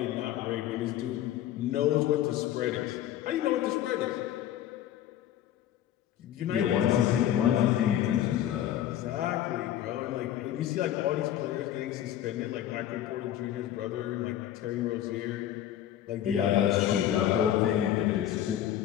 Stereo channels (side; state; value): right; quieter; 11.7 dB